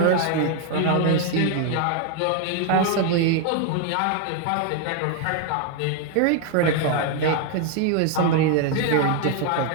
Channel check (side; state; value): both; different; correlation 0.01